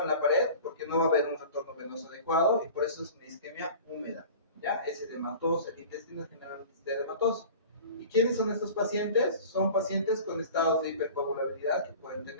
en la pared, porque no va a haber un retorno venoso adecuado, y por eso es una isquemia húmeda, ¿ya? Es edematoso, el intestino generalmente es edematoso. ¿Y quiénes son estos pacientes? Son pacientes con estados de hipercoagulabilidad que pueden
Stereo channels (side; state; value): both; inverted; correlation -0.40